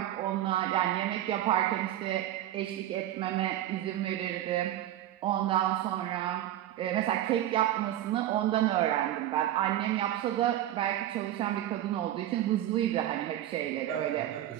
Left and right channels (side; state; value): left; quieter; 12.9 dB